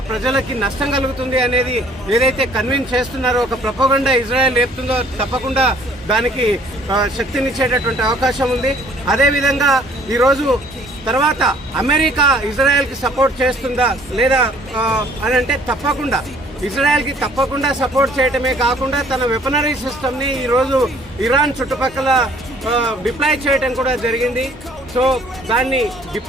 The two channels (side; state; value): both; normal; correlation 0.57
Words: ప్రజలకి నష్టం కలుగుతుంది అనేది ఏదైతే కన్విన్స్ చేస్తున్నారో, ఒక ప్రపోగండా ఇజ్రాయెల్ లేపుతుందో తప్పకుండా దానికి శక్తినిచ్చేటటువంటి అవకాశం ఉంది. అదేవిధంగా ఈరోజు తర్వాత అమెరికా ఇజ్రాయెల్కి సపోర్ట్ చేస్తుందా లేదా అని అంటే తప్పకుండా ఇజ్రాయెల్కి సపోర్ట్ చేయటమే కాకుండా తన వెపనరీ సిస్టమ్ని ఈరోజు ఇరాన్ చుట్టుపక్కల డిప్లాయ్ చేయటం కూడా జరిగింది. సో దాన్ని